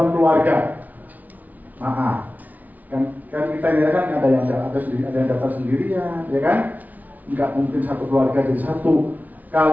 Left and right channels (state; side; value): late; left; 0.076 ms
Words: keluarga, maaf, kan kita ini kan ada yang daftar sendirian, ya kan? Nggak mungkin satu keluarga jadi satu.